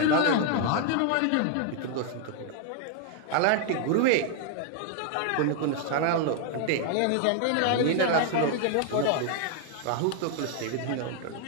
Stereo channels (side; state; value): both; different; correlation 0.00